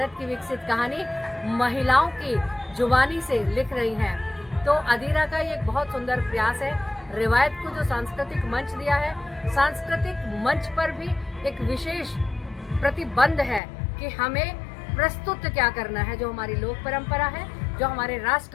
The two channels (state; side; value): drops out; right; at 13.6 s